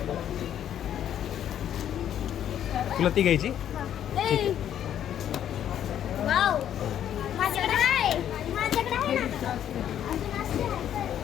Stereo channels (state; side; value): quieter; right; 10.3 dB